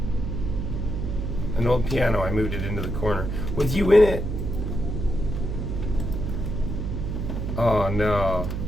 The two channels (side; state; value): right; noise; hum, 3 dB below the sound